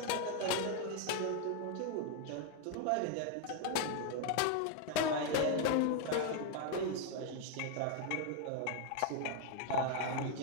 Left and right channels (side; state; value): both; different; correlation 0.00